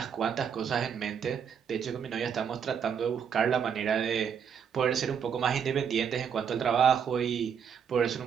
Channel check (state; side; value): quieter; left; 7.5 dB